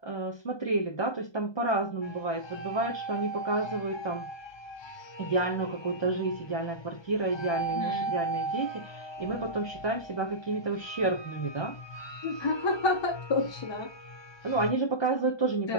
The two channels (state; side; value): late; right; 1.2 ms